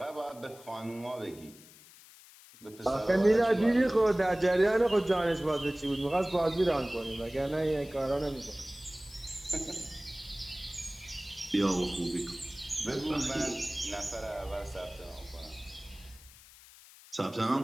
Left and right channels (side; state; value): left; noise; hiss, 21 dB below the sound